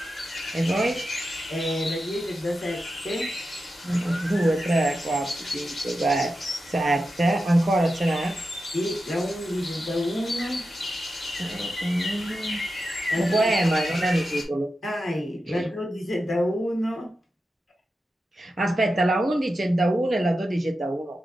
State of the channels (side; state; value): both; normal; correlation 0.90